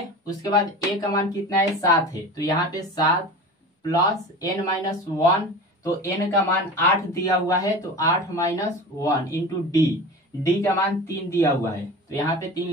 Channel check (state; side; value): normal; both; correlation 0.34